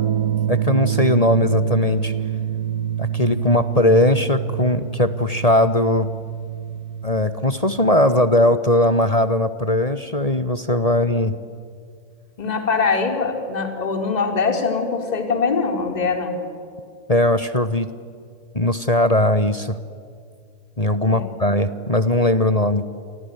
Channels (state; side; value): late; right; 1.8 ms